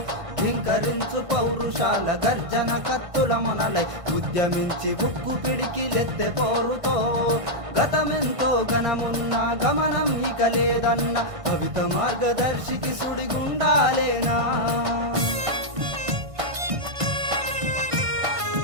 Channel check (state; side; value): late; left; 1.6 ms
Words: ధింకరించు పౌరుషాల గర్జన కత్తుల మొనలై ఉద్యమించి ఉక్కు పిడికిలెత్తె పోరుతో గతమెంతో ఘనమున్న గమనం ఇక లేదన్న కవిత మార్గదర్శికి సుడిగుండాలేనా.